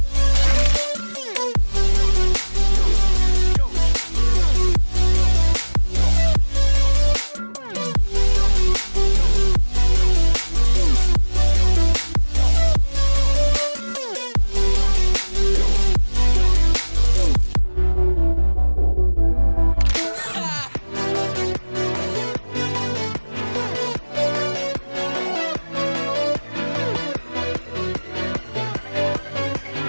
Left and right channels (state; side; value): inverted; both; correlation -1.00